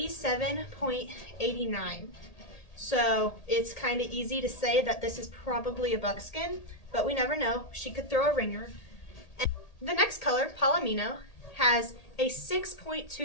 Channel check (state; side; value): late; right; 1.8 ms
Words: So it's kind of easy to say that this is probably a buckskin, but we never know. She could throw a ringer. And the next color, Palomino, has a